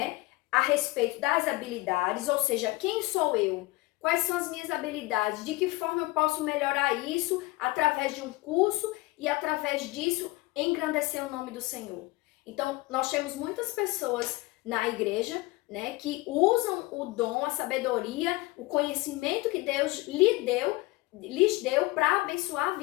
a respeito das habilidades, ou seja, quem sou eu? Quais são as minhas habilidades? De que forma eu posso melhorar isso através de um curso e através disso engrandecer o nome do Senhor? Então, nós temos muitas pessoas na igreja, né, que usam o dom, a sabedoria, o conhecimento que Deus lhes deu para abençoar a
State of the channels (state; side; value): quieter; right; 21.8 dB